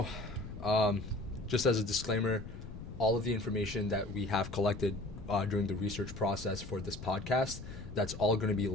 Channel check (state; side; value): noise; left; rumble, 11 dB below the sound